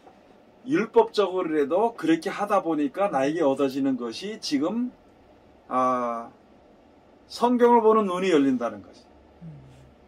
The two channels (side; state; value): both; identical; correlation 1.00